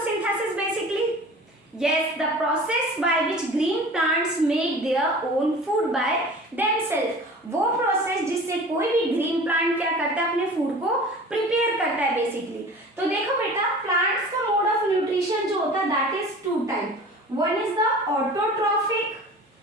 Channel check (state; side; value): normal; both; correlation 0.41